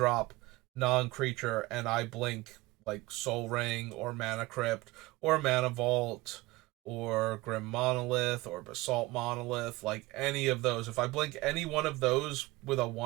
non creature and I blink, like, Soul Ring or Mana Crypt or Mana Vault or Grim Monolith or Basalt Monolith, like any of those, if I blink any one of those with a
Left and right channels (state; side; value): quieter; left; 20.4 dB